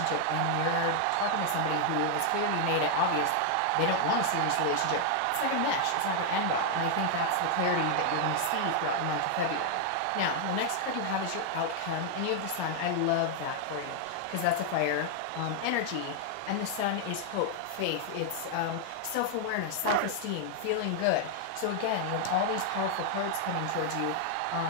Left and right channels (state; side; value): different; both; correlation 0.00